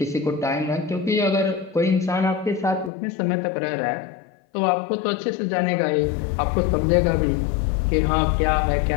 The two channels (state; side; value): drops out; right; at 2.9 s